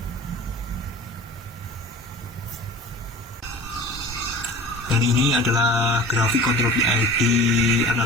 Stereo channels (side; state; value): both; normal; correlation 0.39